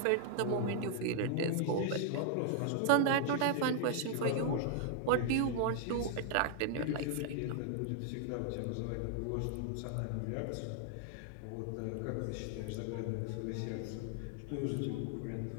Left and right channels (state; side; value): different; both; correlation 0.00